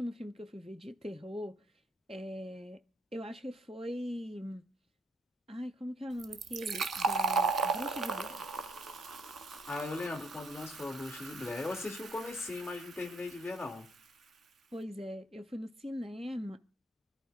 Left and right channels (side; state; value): both; normal; correlation 0.68